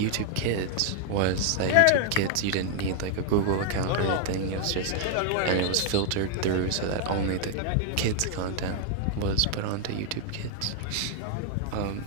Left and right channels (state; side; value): different; both; correlation 0.00